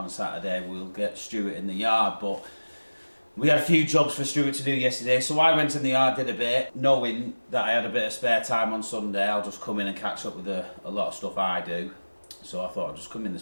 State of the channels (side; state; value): both; inverted; correlation -1.00